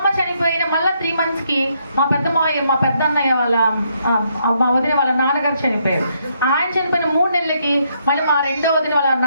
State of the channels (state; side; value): inverted; both; correlation -0.74